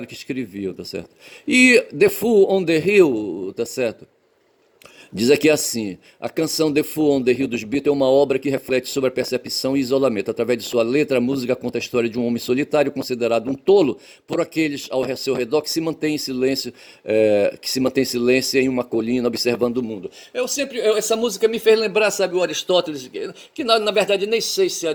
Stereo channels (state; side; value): identical; both; correlation 1.00